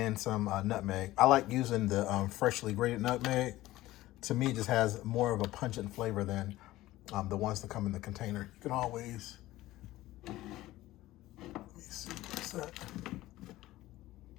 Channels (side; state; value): right; quieter; 16.6 dB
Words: some nutmeg. I like using the freshly grated nutmeg. To me, it just has more of a pungent flavor than the ones that come in the container. You can always, let me see, what's that?